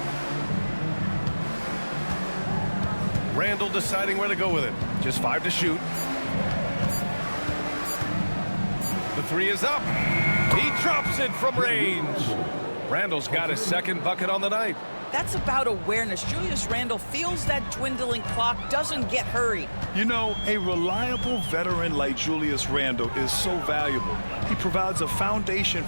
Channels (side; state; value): both; inverted; correlation -1.00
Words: Randall deciding where to go with it. Just 5 to shoot. The 3 is up. He drops it from range. Randall's got his second bucket on the night. That's about awareness. Julius Randle feels that dwindling clock, doesn't get hurried. You know, a reliable veteran like Julius Randle is so valuable. He provides a foundation